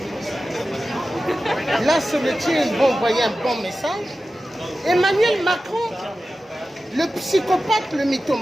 là c'est le tir, ils vont envoyer un bon message. Emmanuel Macron, le psychopathe, le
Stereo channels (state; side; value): normal; both; correlation 0.94